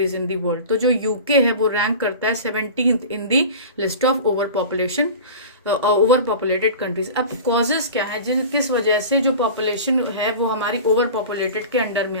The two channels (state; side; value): inverted; both; correlation -0.35